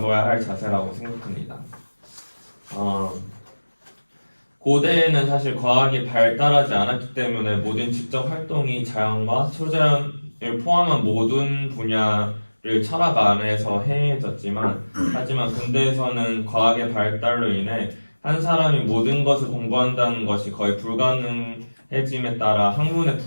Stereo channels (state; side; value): inverted; both; correlation -1.00